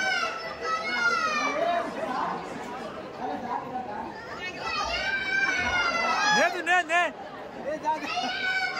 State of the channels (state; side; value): identical; both; correlation 1.00